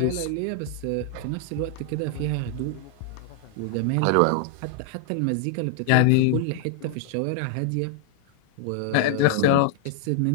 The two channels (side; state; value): both; different; correlation 0.00